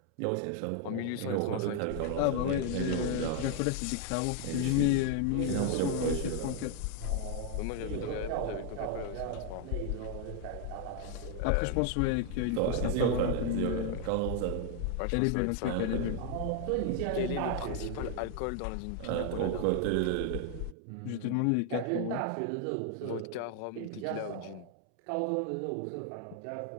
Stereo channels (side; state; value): both; different; correlation 0.00